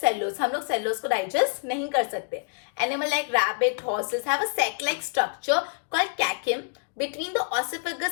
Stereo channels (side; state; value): right; silent; digital silence